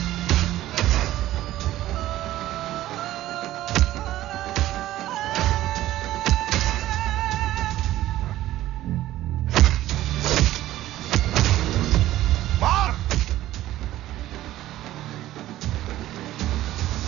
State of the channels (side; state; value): left; quieter; 14.7 dB